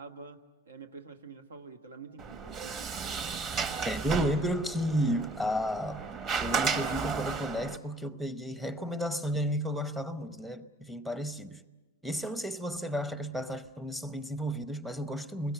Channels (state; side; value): normal; both; correlation 0.60